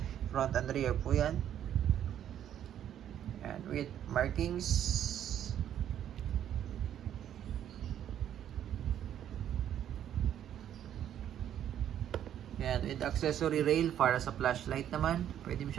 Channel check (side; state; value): left; quieter; 10.4 dB